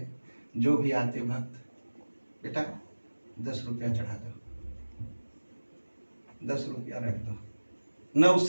जो भी आते भक्त, बेटा 10 रुपया चढ़ा दो, 10 रुपया रख दो, न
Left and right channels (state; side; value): inverted; both; correlation -1.00